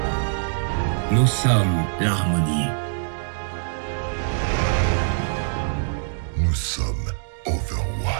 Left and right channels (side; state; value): left; silent; digital silence